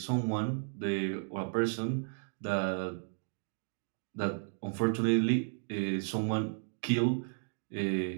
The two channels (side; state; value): left; silent; digital silence